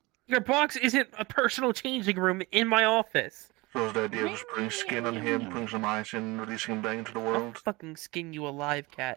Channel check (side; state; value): left; quieter; 23.1 dB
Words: Your box isn't a personal changing room in my office. So is the idea of just putting skin on him, putting some ice in, releasing him back into the world? I'll fucking skin you alive,